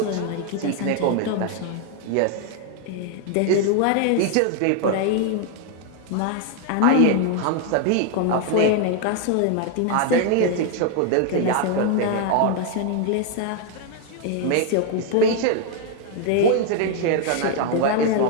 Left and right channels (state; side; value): different; both; correlation 0.00